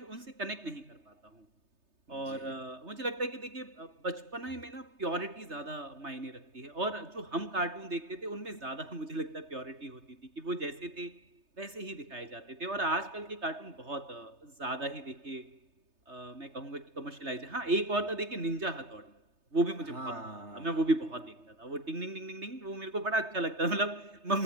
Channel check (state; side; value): late; left; 3.3 ms